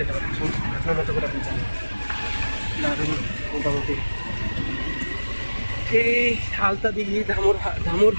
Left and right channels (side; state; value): both; inverted; correlation -1.00